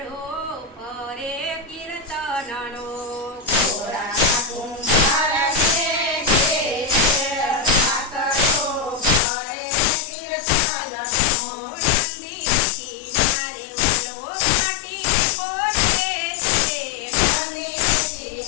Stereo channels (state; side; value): drops out; right; at 9.2 s